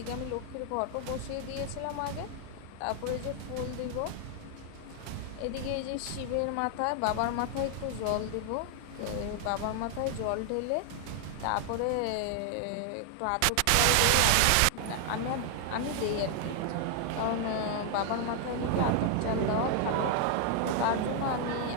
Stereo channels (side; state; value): both; different; correlation 0.00